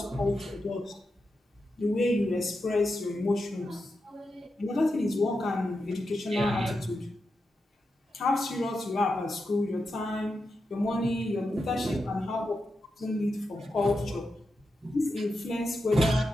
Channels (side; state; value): both; normal; correlation 0.88